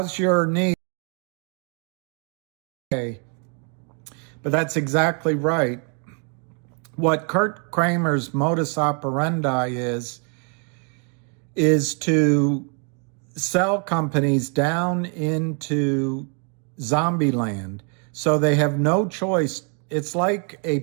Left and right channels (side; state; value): left; quieter; 38.9 dB